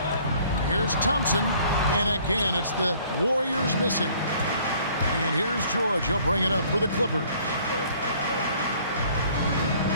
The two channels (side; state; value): both; inverted; correlation -0.57